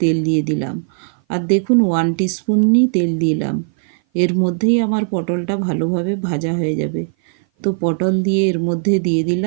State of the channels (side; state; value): left; silent; 57 dB below the other